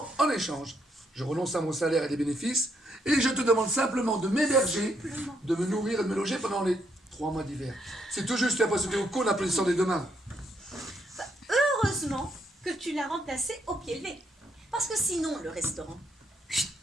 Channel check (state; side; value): normal; both; correlation 0.75